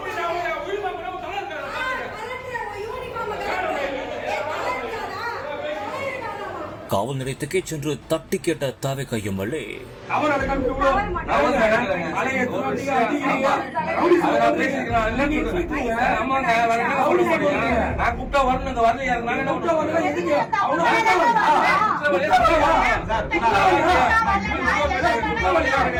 காவல் நிலையத்துக்கே சென்று தட்டி கேட்ட தாவேகா எம்எல்ஏ.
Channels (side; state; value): both; identical; correlation 1.00